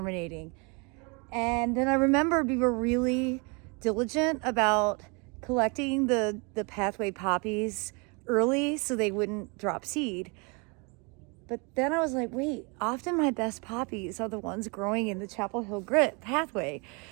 And then I remembered we were really diligent about collecting the pathway poppies early so they wouldn't drop seed. But then I was like, wait, often my best poppies are the ones growing in the Chapel Hill Grit pathway.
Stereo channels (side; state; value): left; quieter; 31.6 dB